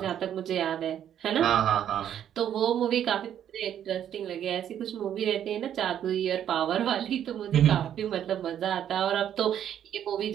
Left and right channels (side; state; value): left; quieter; 10.0 dB